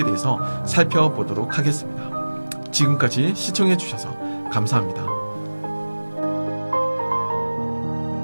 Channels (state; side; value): inverted; both; correlation -1.00